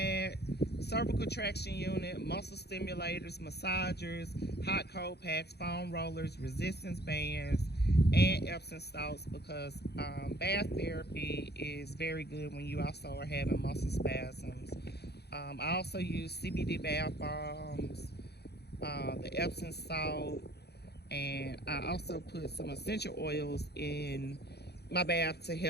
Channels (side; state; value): right; late; 0.48 ms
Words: cervical traction unit, muscle stimulators, massagers, hot cold packs, foam rollers, resistance bands, and Epsom salts because bath therapy is very good when you also are having muscle spasms. I also use CBD bath bombs, the Epsom salt, and I also put some essential oils in my bath to